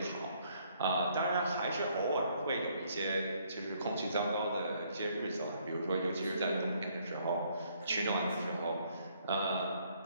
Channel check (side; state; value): both; inverted; correlation -0.67